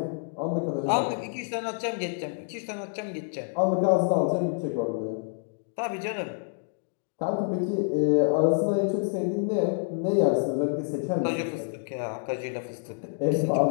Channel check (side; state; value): right; silent; digital silence